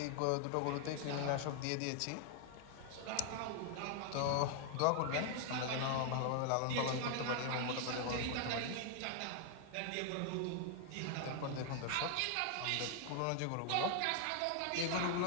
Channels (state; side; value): different; both; correlation 0.00